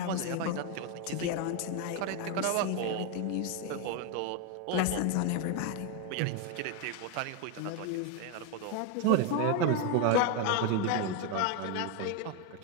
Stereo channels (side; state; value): both; different; correlation 0.01